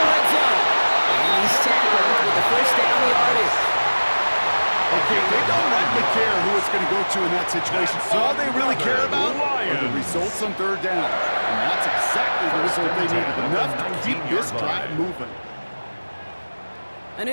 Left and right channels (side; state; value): both; inverted; correlation -1.00